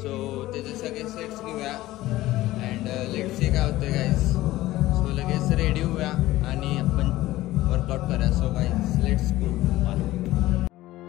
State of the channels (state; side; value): quieter; right; 16.5 dB